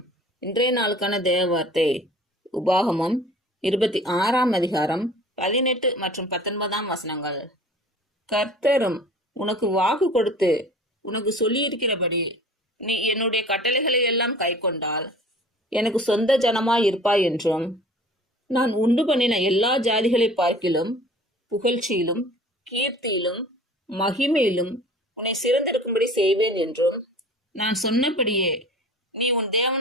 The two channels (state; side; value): normal; both; correlation 0.45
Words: இன்றைய நாளுக்கான தேவ வார்த்தை உபாகமம் 26ஆம் அதிகாரம் 18 மற்றும் 19ஆம் வசனங்கள். கர்த்தரும் உனக்கு வாக்கு கொடுத்து உனக்கு சொல்லியிருக்கிறபடி நீ என்னுடைய கட்டளைகளை எல்லாம் கைக்கொண்டால் எனக்கு சொந்த ஜனமாய் இருப்பாய் என்றும், நான் உண்டு பண்ணின எல்லா ஜாதிகளை பார்க்கிலும் புகழ்ச்சியிலும் கீர்த்தியிலும் மகிமையிலும் உன்னை சிறந்திருக்கும்படி செய்வேன் என்றும், நான் சொன்னபடியே நீ உன்